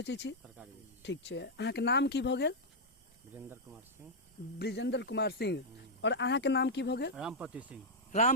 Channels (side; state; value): both; normal; correlation -0.05